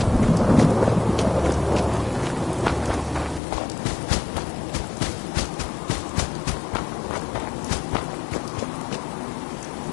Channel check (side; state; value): right; drops out; at 3.4 s